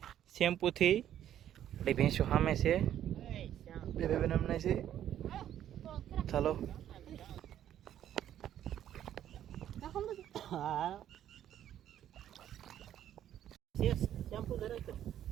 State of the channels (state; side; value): quieter; left; 11.0 dB